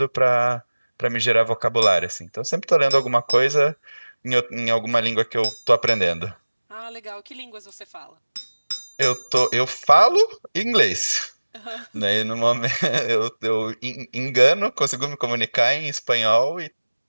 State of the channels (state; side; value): inverted; both; correlation -1.00